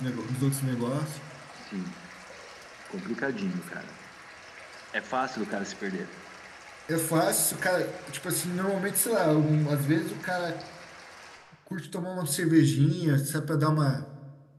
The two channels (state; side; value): identical; both; correlation 1.00